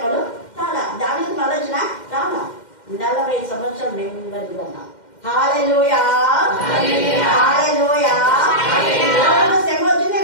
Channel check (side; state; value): right; late; 2.1 ms